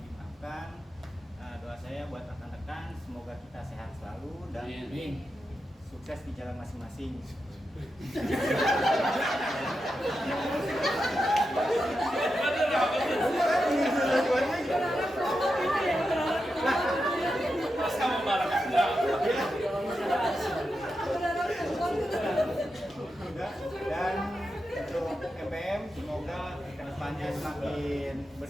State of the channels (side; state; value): both; normal; correlation 0.88